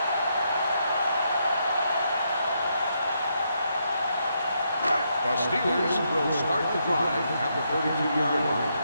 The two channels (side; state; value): both; inverted; correlation -0.78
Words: The Steelers will start the drive at the 32-yard line.